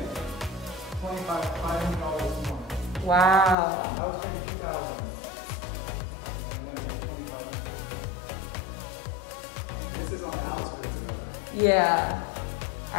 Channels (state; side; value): drops out; right; at 3.6 s